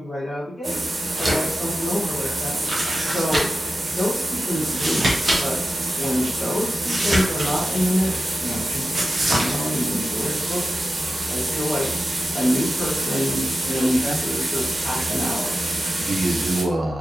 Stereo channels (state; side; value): normal; both; correlation 0.93